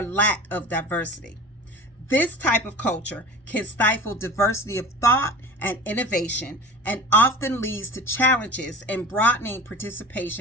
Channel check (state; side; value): normal; both; correlation 0.37